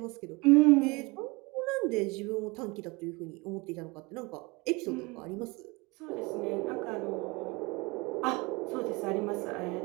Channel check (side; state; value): left; quieter; 25.9 dB